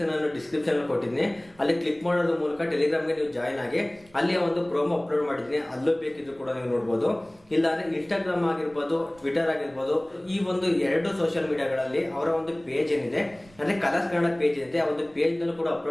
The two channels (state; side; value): noise; right; rumble, 28 dB below the sound